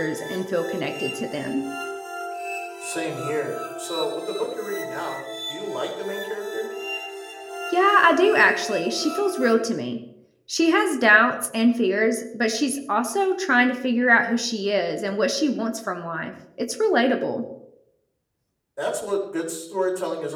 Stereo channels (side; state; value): both; identical; correlation 1.00